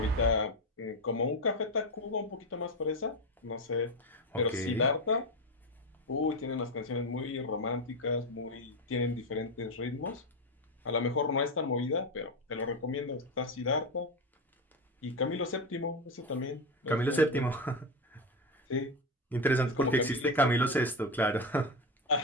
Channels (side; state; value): both; normal; correlation 0.14